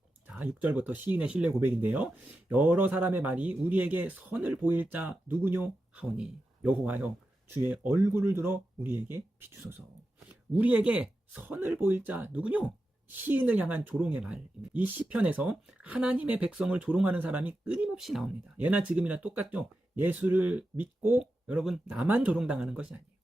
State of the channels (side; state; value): both; normal; correlation 0.90